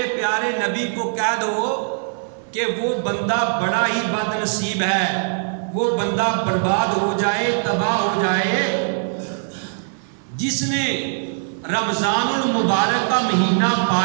پیارے نبی کو کہہ دو کہ وہ بندہ بڑا ہی بد نصیب ہے، وہ بندہ برباد ہو جائے، تباہ ہو جائے، جس نے رمضان المبارک کا مہینہ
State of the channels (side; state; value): left; silent; digital silence